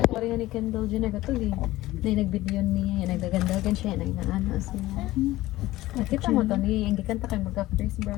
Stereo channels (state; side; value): quieter; right; 17.1 dB